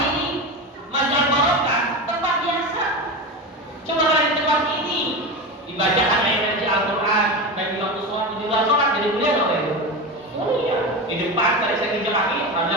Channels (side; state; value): both; normal; correlation 0.23